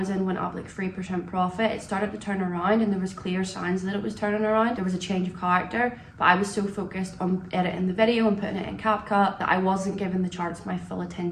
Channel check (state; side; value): identical; both; correlation 1.00